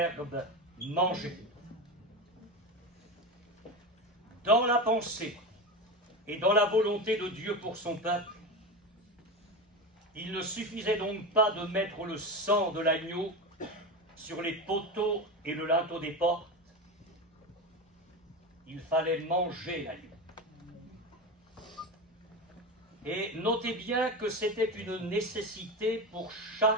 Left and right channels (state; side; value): normal; both; correlation 0.21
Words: manger. Dans la pensée et dans la volonté de Dieu pour son peuple, il ne suffisait donc pas de mettre le sang de l'agneau sur les poteaux et le linteau des portes. Il fallait manger l'agneau. Et notez bien que c'était une nécessité pour chaque